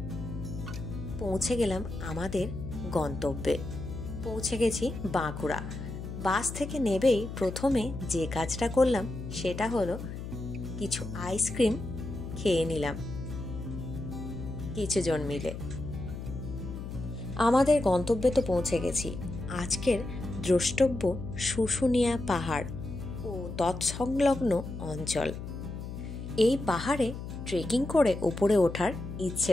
পৌঁছে গেলাম আমাদের গন্তব্যে। পৌঁছে গেছি বাঁকুড়া। বাস থেকে নেবেই প্রথমে যে কাজটা করলাম সেটা হলো কিছু আইসক্রিম খেয়ে নিলাম কিছুজন মিলে। আমাদের গন্তব্যে তো পৌঁছে গেছি। আজকের দ্রষ্টব্য শুশুনিয়া পাহাড় ও তৎসংলগ্ন অঞ্চল। এই পাহাড়ে ট্রেকিং করে উপরে ওঠার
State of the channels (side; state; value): left; noise; hum, 8 dB below the sound